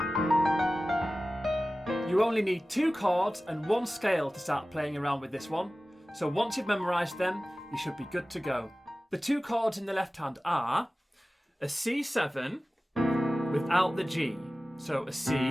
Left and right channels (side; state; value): both; normal; correlation 0.96